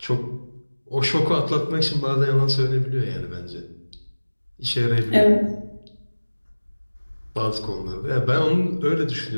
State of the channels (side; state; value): both; inverted; correlation -1.00